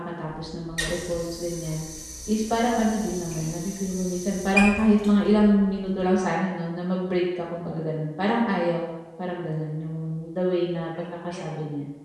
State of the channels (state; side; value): identical; both; correlation 1.00